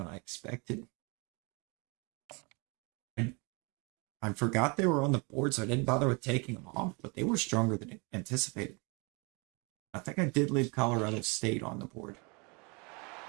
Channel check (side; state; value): left; quieter; 30.9 dB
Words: I expected. I forgot they were on the board, so I didn't bother with taking them off, but they were stronger than anticipated. I think I did leave Colorado State on the board.